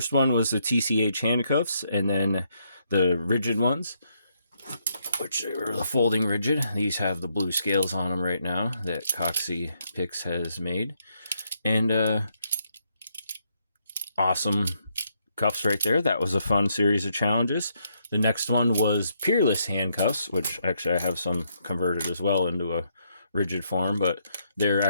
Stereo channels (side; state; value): both; inverted; correlation -0.76